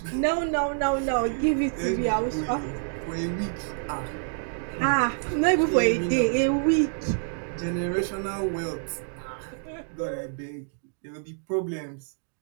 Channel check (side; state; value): left; silent; digital silence